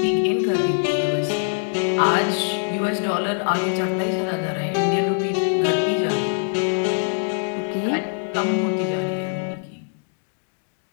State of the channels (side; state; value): right; silent; digital silence